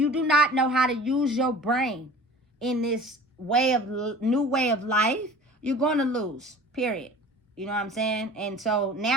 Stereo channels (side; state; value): both; normal; correlation 0.42